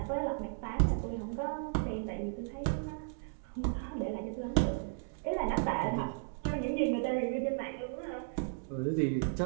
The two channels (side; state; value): left; silent; digital silence